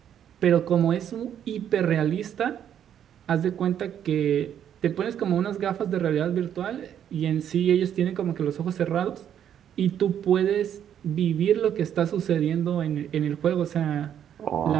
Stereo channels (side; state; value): left; quieter; 9.6 dB